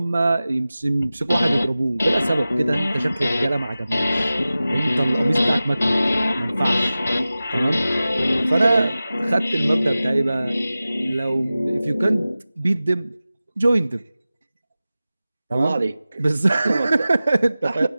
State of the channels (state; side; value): inverted; both; correlation -0.95